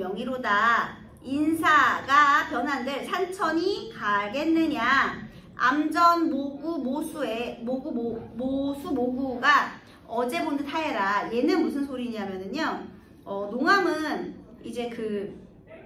인사가 변한들 산천이 가겠느냐. 암전 모구 모수의 모수 모구가 어제 본 듯 하여라. 얘는 무슨 소리냐면은요, 농암은 이제 그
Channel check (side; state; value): both; identical; correlation 1.00